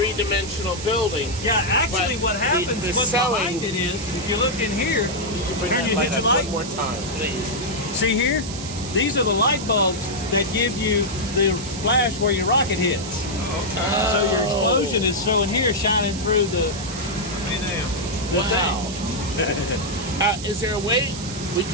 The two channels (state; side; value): noise; right; hiss, 10 dB below the sound